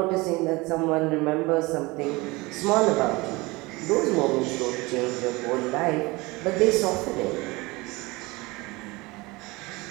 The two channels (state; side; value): quieter; left; 23.2 dB